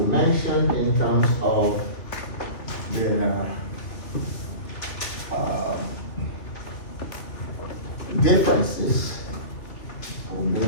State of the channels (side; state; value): right; late; 2.8 ms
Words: mentioned in terms of the differences